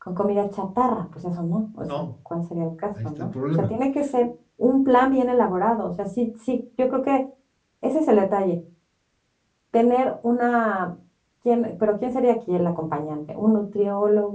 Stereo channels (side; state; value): both; identical; correlation 1.00